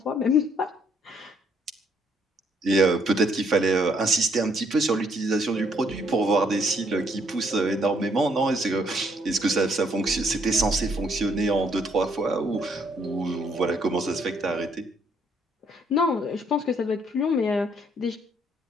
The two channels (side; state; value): both; normal; correlation 0.68